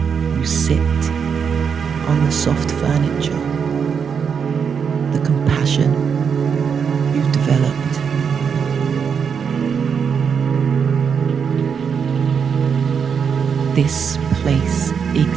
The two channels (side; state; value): left; quieter; 6.7 dB